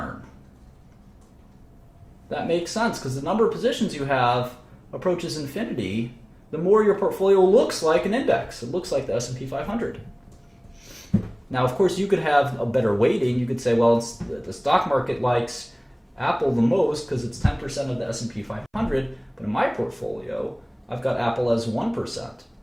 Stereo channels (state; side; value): identical; both; correlation 1.00